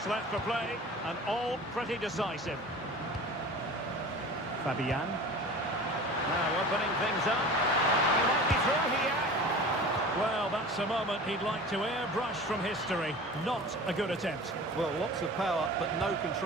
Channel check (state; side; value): normal; both; correlation 0.38